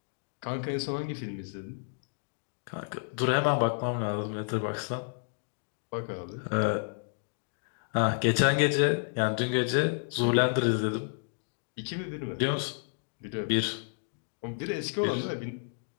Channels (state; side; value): silent; right; digital silence